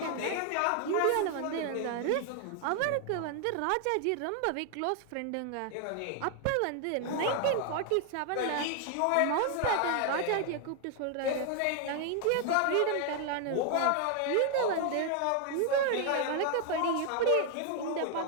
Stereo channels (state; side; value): different; both; correlation 0.00